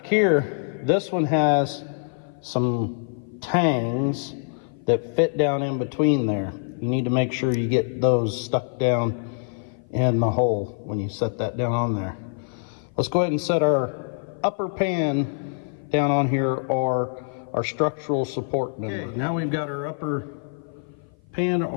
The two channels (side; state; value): right; silent; 55 dB below the other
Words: here, this one has some tangs that fit down in between there. You need to make sure you get those stuck down in the hole when you set that down on there. Let's go ahead and set our upper pan down on here, or our structural support member. Okay, now we've got our upper pan